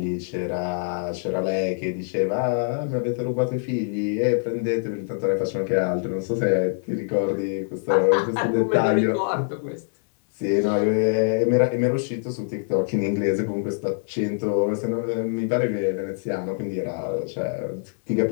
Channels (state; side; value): silent; right; digital silence